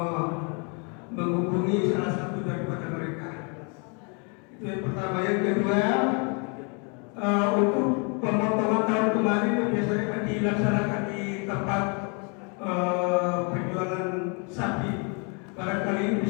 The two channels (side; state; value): right; quieter; 35.4 dB